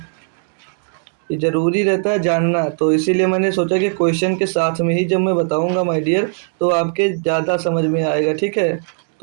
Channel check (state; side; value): silent; left; digital silence